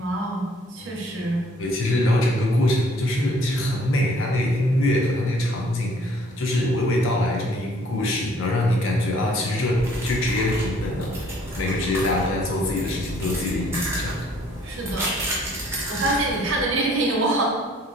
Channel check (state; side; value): normal; both; correlation 0.59